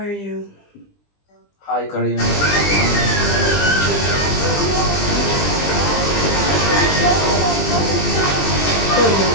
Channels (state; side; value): late; right; 20 ms